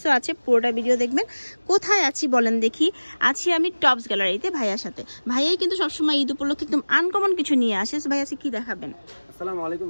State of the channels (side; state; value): both; inverted; correlation -1.00